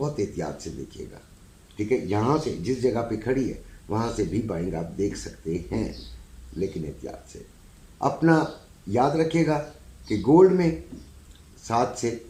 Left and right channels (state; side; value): identical; both; correlation 1.00